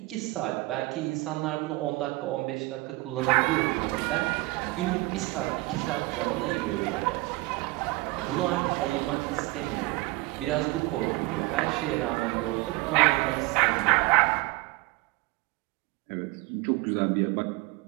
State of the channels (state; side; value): quieter; left; 21.8 dB